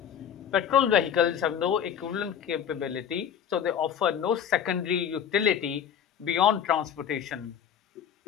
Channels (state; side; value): quieter; right; 8.6 dB